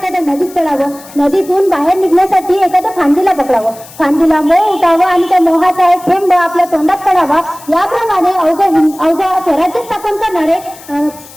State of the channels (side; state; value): left; noise; hiss, 20 dB below the sound